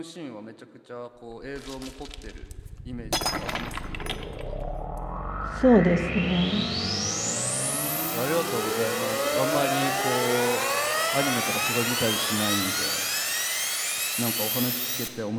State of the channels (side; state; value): both; identical; correlation 1.00